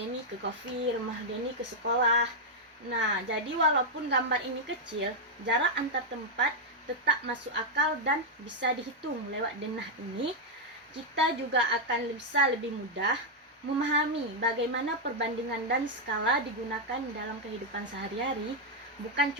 ke kopi, rumah Deni ke sekolah. Nah, jadi walaupun gambar ini kecil, jarak antar tempat tetap masuk akal dan bisa dihitung lewat denah ini. Kita juga akan bisa lebih mudah memahami bagaimana perbandingan dan skala digunakan dalam kehidupan sehari-hari, bukan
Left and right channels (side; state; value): both; normal; correlation -0.02